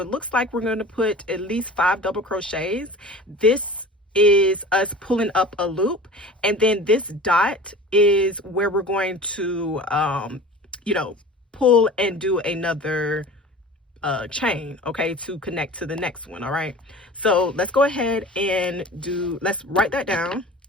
looks like we're going to put at least 5 double crochets. This is us pulling up a loop, and then this dot is where we're going to you know, pull and do another chain, okay, to connect to the next one. All right, so let's go ahead and let's write that down.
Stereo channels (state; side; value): normal; both; correlation 0.39